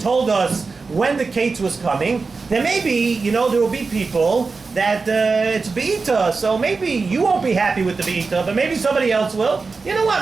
us when the Kates was coming, then maybe, there will be people that it's Be'ita, so maybe you won't be happy with the Be'ita, but maybe somebody else will. You know what,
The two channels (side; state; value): left; quieter; 4.4 dB